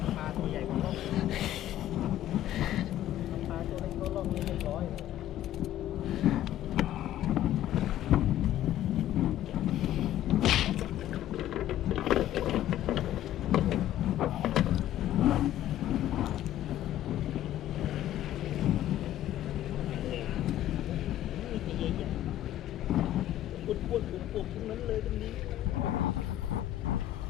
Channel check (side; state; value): right; quieter; 12.8 dB